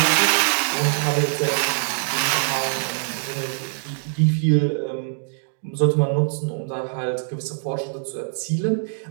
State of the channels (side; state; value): left; silent; digital silence